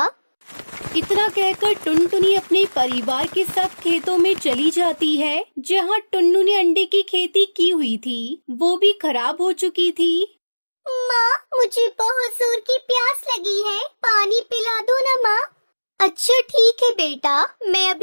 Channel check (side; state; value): both; inverted; correlation -1.00